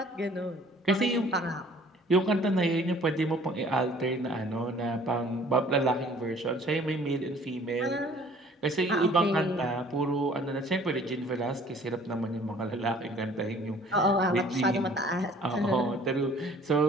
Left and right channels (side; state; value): both; normal; correlation 0.54